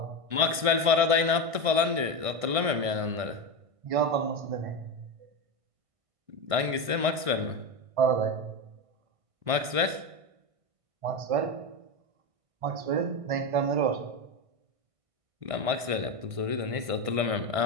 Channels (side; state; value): left; late; 1.5 ms